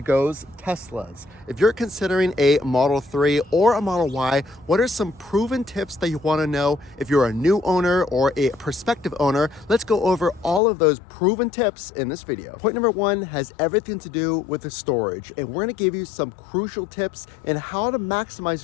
goes, Teslas. If you're considering a Model 3 or a Model Y, what are some proven tips that you want to know? If you're a new owner or a prospective owner, let's go over all of those proven tips in this video. Point number one has everything to do with the storage, and we're going to give you some crucial tips in how to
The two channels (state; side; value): drops out; right; at 10.6 s